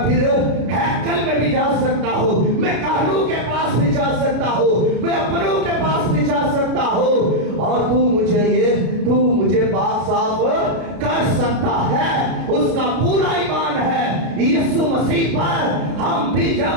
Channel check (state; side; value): late; left; 33 ms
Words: پھر ہیکل میں بھی جا سکتا ہوں، میں کاہنوں کے پاس بھی جا سکتا ہوں، میں اپنوں کے پاس بھی جا سکتا ہوں، اور تو مجھے پاک صاف کر سکتا ہے۔ اس کا پورا ایمان ہے یسوع مسیح پر۔ ہم بھی